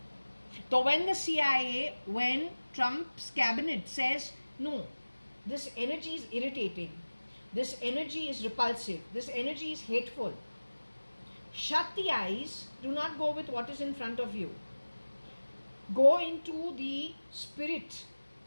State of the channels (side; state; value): both; inverted; correlation -1.00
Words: So when the CIA, when Trump's cabinet says, no, this energy is irritating, this energy is repulsive, this energy is hateful, shut the eyes, do not go with what is in front of you. Go into the spirit